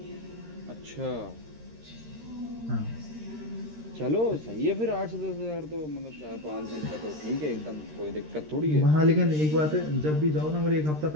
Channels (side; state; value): left; late; 13 ms